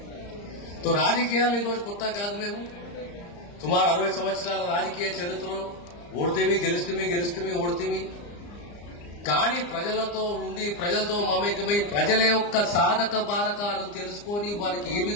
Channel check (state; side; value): late; right; 34 ms